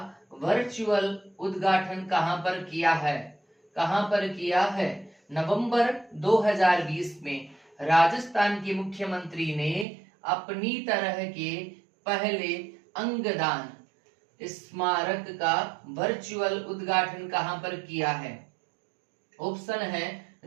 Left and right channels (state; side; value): drops out; left; at 9.9 s